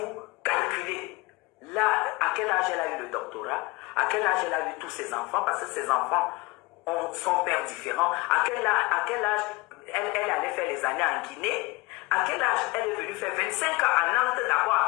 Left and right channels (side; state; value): right; quieter; 22.5 dB